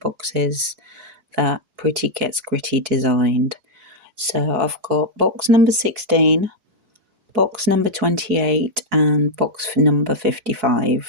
that Pretty Gets Gritty designed. So I've got box number 16, box number 28 and box number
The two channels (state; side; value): late; left; 4.6 ms